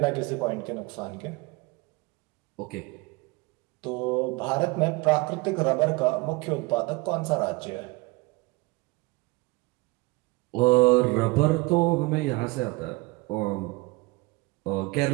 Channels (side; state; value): left; quieter; 24.1 dB